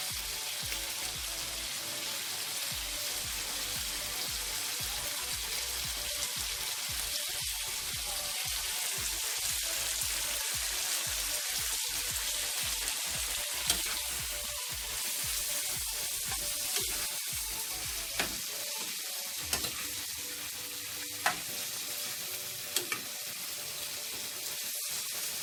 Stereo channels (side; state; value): both; identical; correlation 1.00